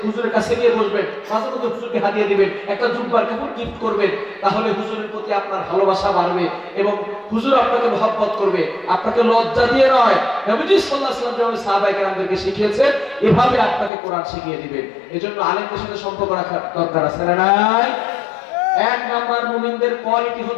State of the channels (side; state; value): right; drops out; at 13.9 s